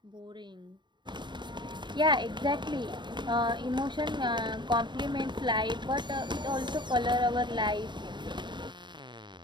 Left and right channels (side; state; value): left; late; 0.22 ms